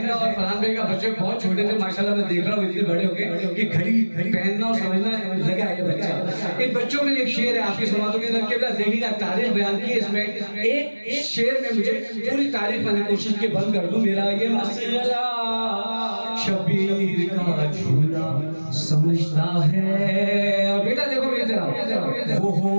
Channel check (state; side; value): inverted; both; correlation -1.00